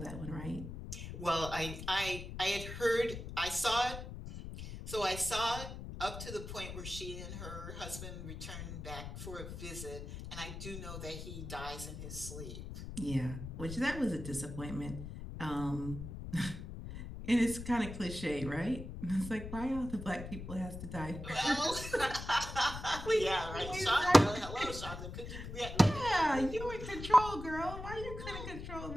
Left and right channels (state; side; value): noise; left; rumble, 9 dB below the sound